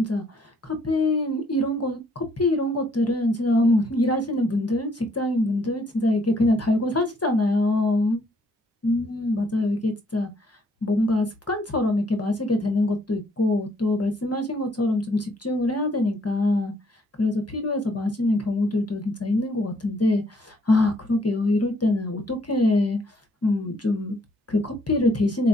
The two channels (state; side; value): normal; both; correlation 0.67